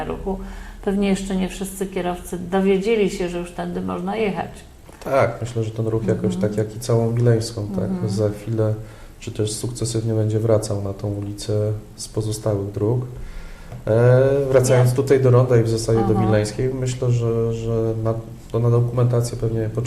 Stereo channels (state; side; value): identical; both; correlation 1.00